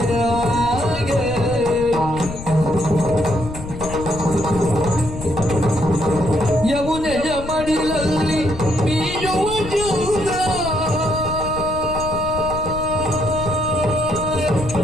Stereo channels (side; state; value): left; noise; rumble, 10 dB below the sound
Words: ಯಮುನೆಯ ಮಡಿಲಲ್ಲಿ ಮೀಯುವ ಜೂದ